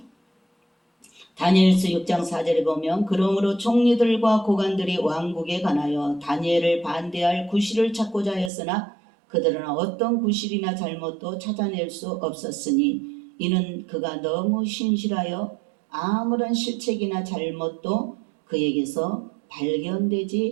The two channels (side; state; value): left; drops out; at 8.5 s